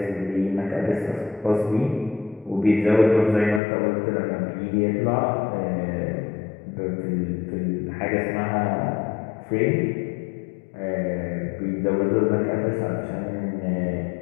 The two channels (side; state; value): right; drops out; at 3.6 s